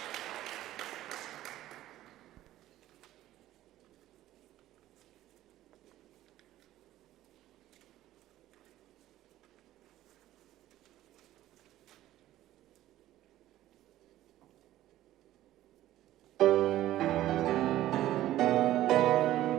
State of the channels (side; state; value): left; quieter; 14.3 dB